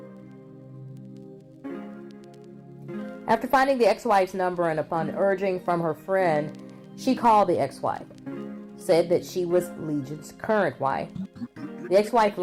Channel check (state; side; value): identical; both; correlation 1.00